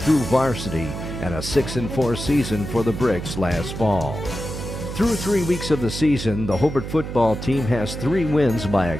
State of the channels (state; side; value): noise; right; hum, 7 dB below the sound